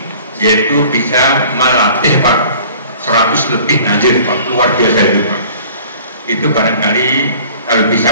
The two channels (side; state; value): both; inverted; correlation -0.49